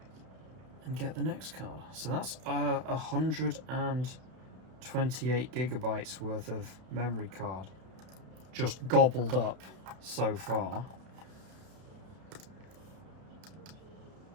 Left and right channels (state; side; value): late; left; 32 ms